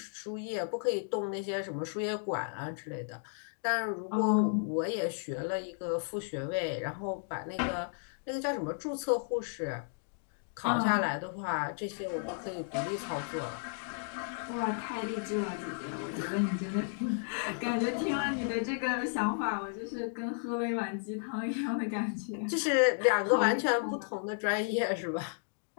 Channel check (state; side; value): silent; right; digital silence